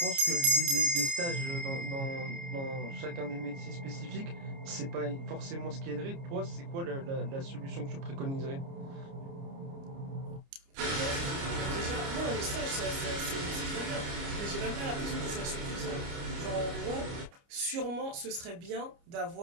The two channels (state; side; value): late; left; 29 ms